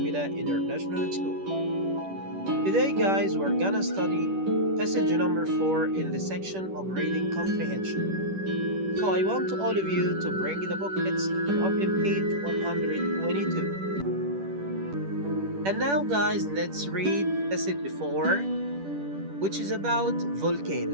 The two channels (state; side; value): late; left; 10 ms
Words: International School. Today, guys, we're gonna study passage number 4 in the section of reading comprehension. So I want all of you to bring the booklets and open page 122. And now, guys, let's read passage 4, which is about